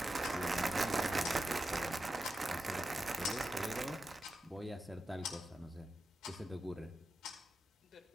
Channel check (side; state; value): both; normal; correlation 0.90